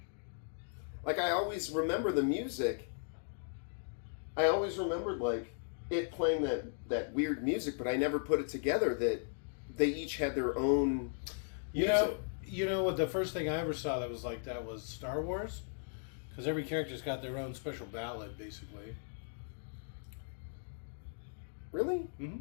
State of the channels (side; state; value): right; silent; digital silence